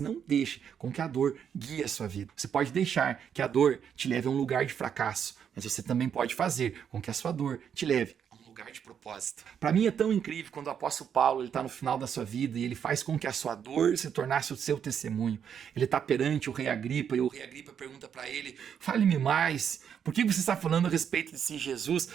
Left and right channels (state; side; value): quieter; left; 8.1 dB